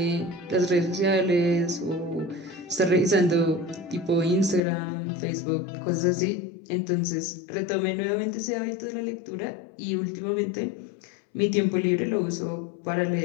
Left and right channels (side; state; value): right; drops out; at 4.6 s